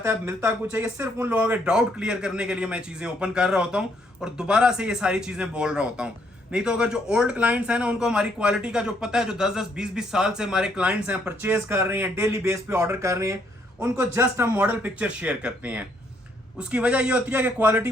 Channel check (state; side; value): normal; both; correlation 0.70